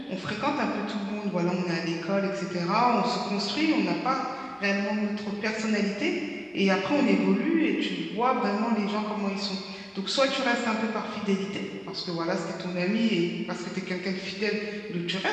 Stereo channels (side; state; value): both; identical; correlation 1.00